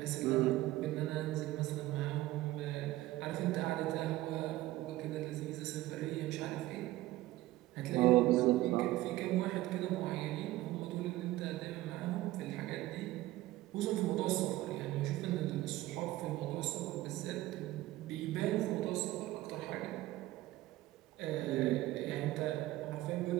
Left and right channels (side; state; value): left; quieter; 16.8 dB